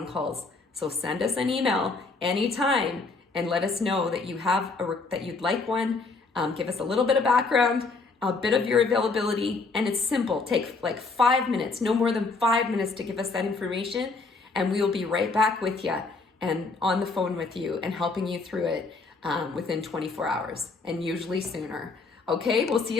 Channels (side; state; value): right; quieter; 4.0 dB